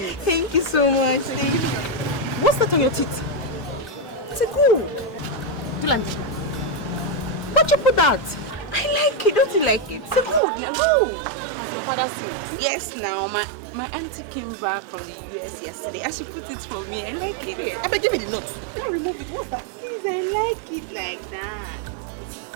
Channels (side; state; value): left; drops out; at 10.4 s